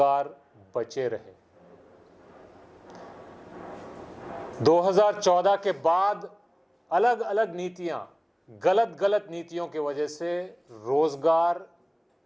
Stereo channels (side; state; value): both; identical; correlation 1.00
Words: बचे रहे। 2014 के बाद अलग अलग नीतियां, गलत नीतियों की वजह से रोजगार